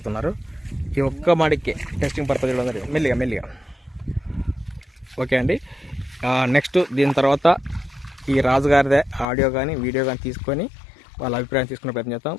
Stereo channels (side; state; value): right; drops out; at 9.2 s